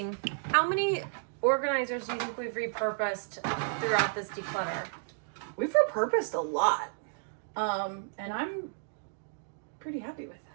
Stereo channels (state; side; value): silent; left; digital silence